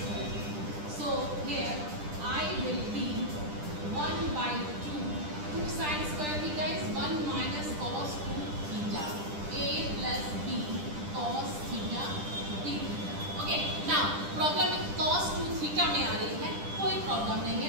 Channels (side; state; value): left; late; 10 ms